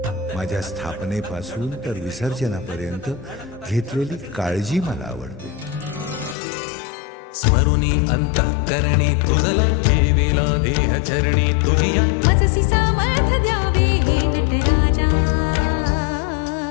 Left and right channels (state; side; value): drops out; right; at 6.4 s